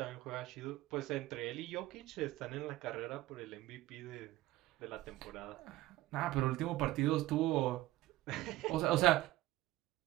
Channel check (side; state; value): left; quieter; 17.0 dB